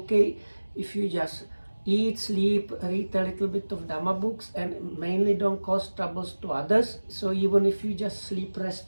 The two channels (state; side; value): inverted; both; correlation -1.00